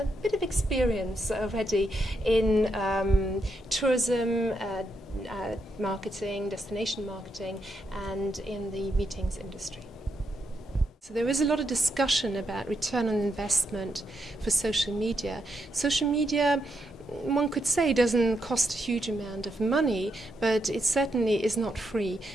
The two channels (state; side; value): normal; both; correlation 0.81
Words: bit of experience already in tourism, marketing, destination marketing, and in the meetings industry. So there is a lot of discussion about return on investment for social media. Social media, one could say, doesn't cost a huge amount of money, but it certainly is not free,